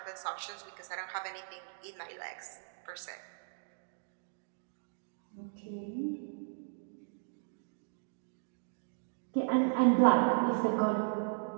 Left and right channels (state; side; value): silent; left; digital silence